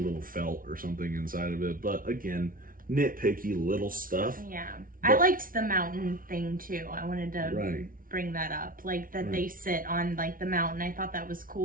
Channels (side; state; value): left; late; 0.41 ms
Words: felt or something inside of it. But again, nitpicky little stuff. Yeah. I liked the mountain thing too. I wanted to bring that up. Like that they sit on like the mountain. I thought that was